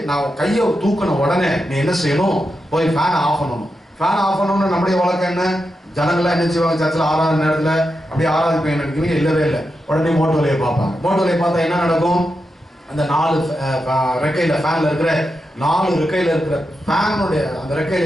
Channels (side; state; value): both; normal; correlation 0.88